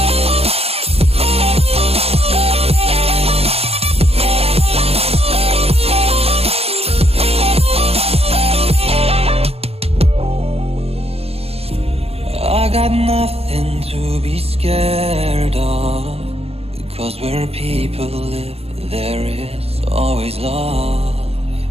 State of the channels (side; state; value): left; late; 0.29 ms